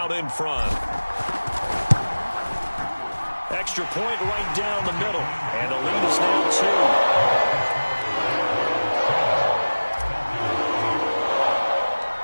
in front. Extra point right down the middle. And the lead is now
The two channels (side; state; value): both; inverted; correlation -1.00